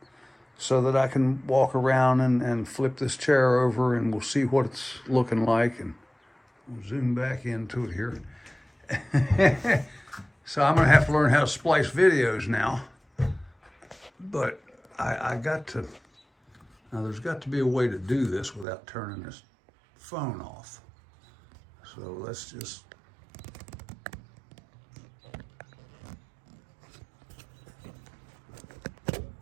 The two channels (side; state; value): left; drops out; at 18.7 s